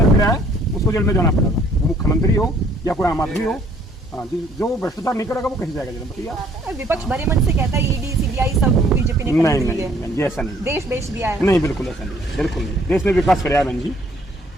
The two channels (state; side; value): normal; both; correlation 0.61